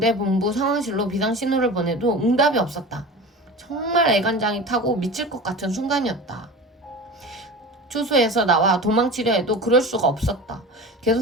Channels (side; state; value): both; normal; correlation 0.33